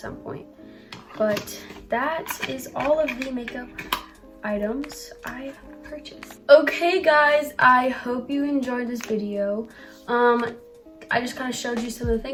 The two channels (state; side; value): identical; both; correlation 1.00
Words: point. But that is all of the makeup items I purchased. Okay guys, I hope you enjoyed this video. I just kind of showed you some of the